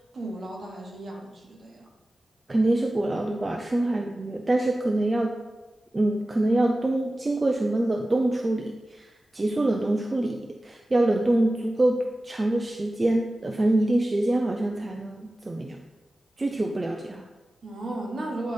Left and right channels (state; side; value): normal; both; correlation 0.96